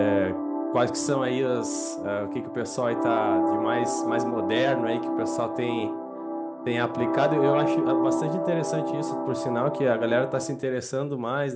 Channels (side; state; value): both; identical; correlation 1.00